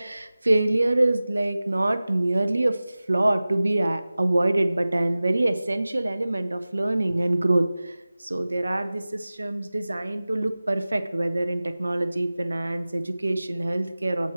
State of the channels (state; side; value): inverted; both; correlation -0.97